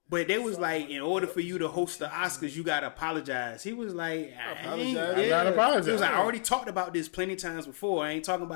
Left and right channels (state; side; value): silent; right; digital silence